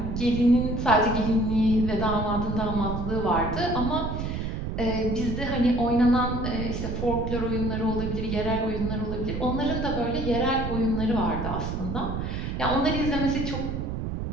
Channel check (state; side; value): noise; right; rumble, 3 dB below the sound